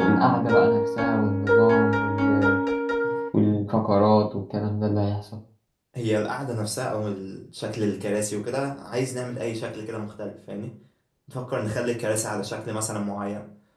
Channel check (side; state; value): both; identical; correlation 1.00